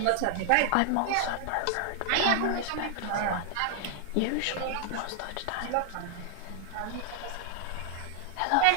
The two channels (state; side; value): different; both; correlation 0.00